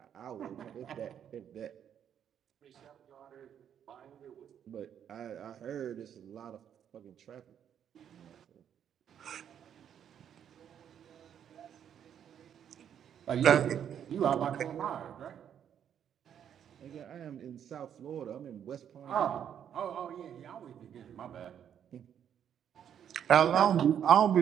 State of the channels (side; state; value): left; quieter; 9.1 dB